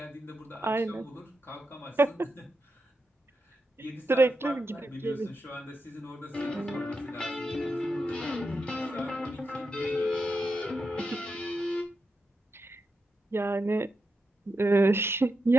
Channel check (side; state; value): both; normal; correlation 0.87